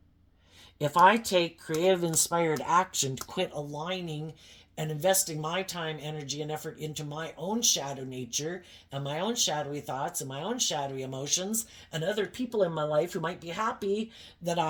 If I take creative, inspired action to quit aligning and investing my time, energy, and effort into my own shadow nature and my own shadowy thoughts and my own shadowy emotions and other people in my life who might be happy that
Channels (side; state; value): both; identical; correlation 1.00